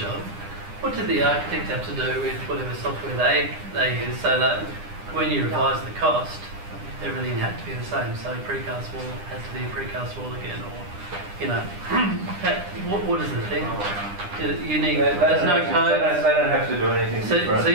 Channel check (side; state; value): left; late; 9.9 ms